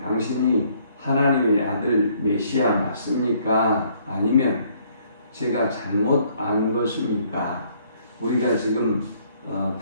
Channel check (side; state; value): both; inverted; correlation -0.65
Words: 하나님의 아들 메시아 맞습니까? 아니면 제가 잘못 안 것입니까? 우리가 지금